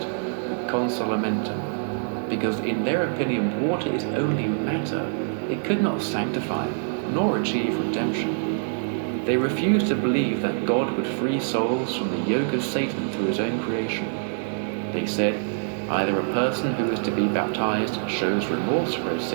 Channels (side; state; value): left; silent; digital silence